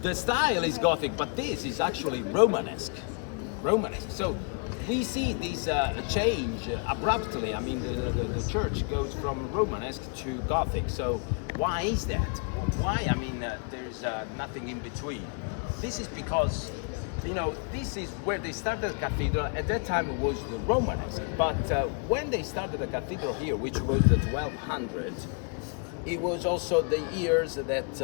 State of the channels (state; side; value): quieter; right; 37.5 dB